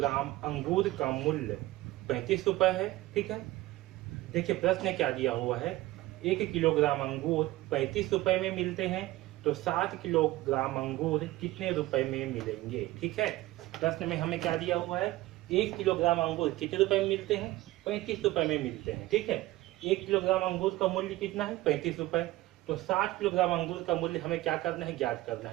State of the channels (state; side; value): quieter; left; 17.6 dB